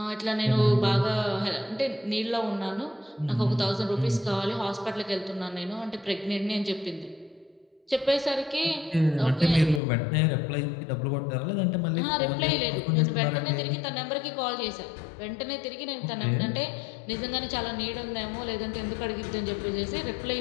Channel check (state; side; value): drops out; right; at 9.8 s